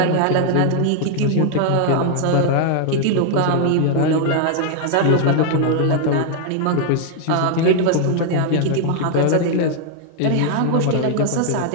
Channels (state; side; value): different; both; correlation 0.00